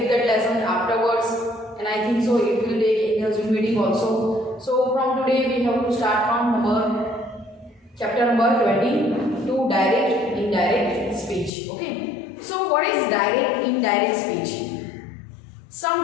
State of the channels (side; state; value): right; drops out; at 11.5 s